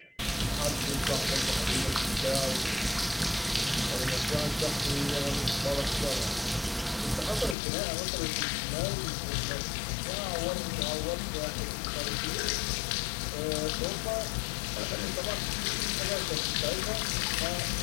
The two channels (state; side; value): drops out; right; at 7.6 s